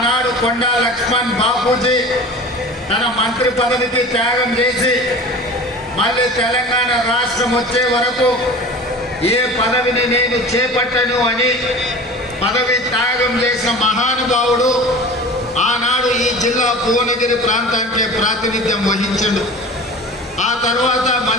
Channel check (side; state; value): both; normal; correlation 0.37